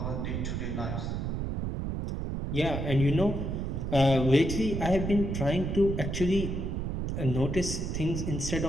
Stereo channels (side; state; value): right; noise; rumble, 2 dB below the sound